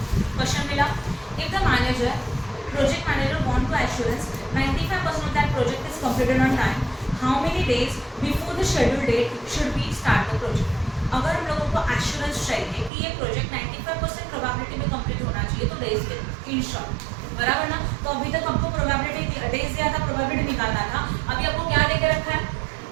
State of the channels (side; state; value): left; drops out; at 12.9 s